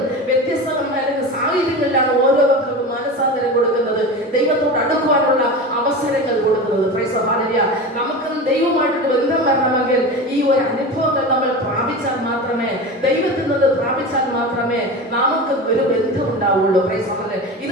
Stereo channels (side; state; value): both; normal; correlation 0.28